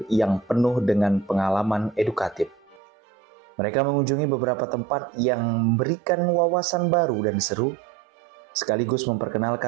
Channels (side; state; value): left; drops out; at 2.8 s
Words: yang penuh dengan pengalaman edukatif. Mereka mengunjungi beberapa tempat yang memberikan wawasan baru dan seru, sekaligus